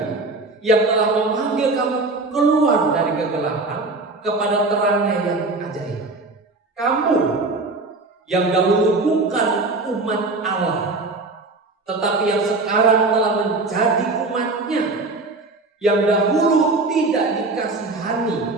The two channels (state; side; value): quieter; left; 3.3 dB